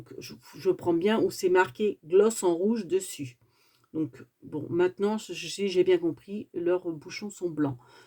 je prends bien où c'est marqué gloss en rouge dessus. Donc, bon, maintenant, si j'ai bien compris, leurs bouchons sont blancs.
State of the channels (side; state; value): both; identical; correlation 1.00